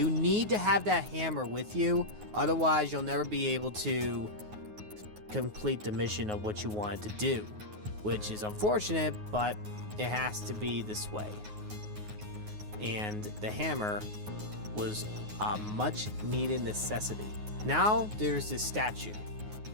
need to have that hammer with you, otherwise you'll never be able to complete the mission of what you wanted to do, which is unfortunate, but it has to be this way. And the hammer was a much needed necessity. Now there's this statue.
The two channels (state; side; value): late; left; 9.5 ms